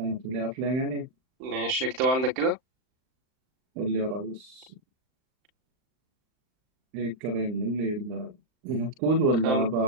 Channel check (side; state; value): left; late; 39 ms